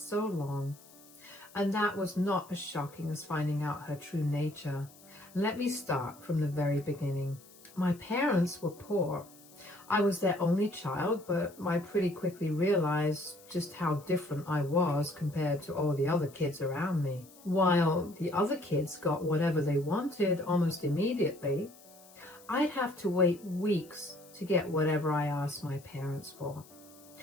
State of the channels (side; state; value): left; noise; hiss, 23 dB below the sound